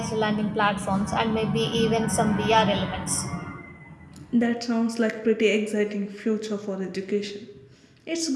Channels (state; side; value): identical; both; correlation 1.00